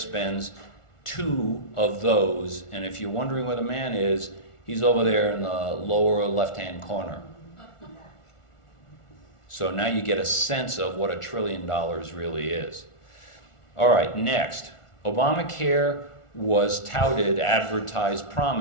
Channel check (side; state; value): right; late; 1.4 ms